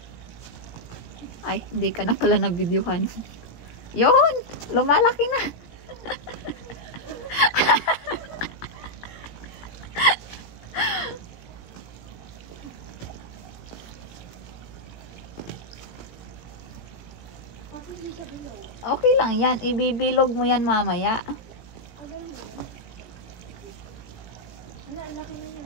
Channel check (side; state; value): right; late; 18 ms